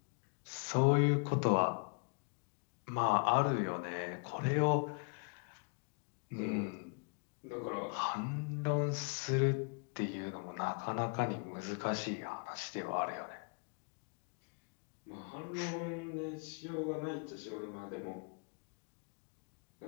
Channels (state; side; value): quieter; right; 38.8 dB